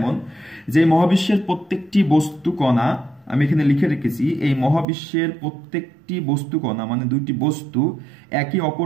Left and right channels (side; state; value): left; drops out; at 4.9 s